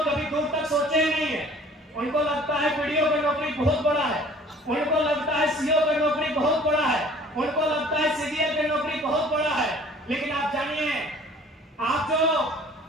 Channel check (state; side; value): normal; both; correlation 0.51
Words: कभी दूर तक सोचे ही नहीं है। उनको लगता है वीडियो की नौकरी बहुत बड़ा है, उनको लगता है सीओ की नौकरी बहुत बड़ा है, उनको लगता है सीजीएल की नौकरी बहुत बड़ा है। लेकिन आप जानिए, आप जो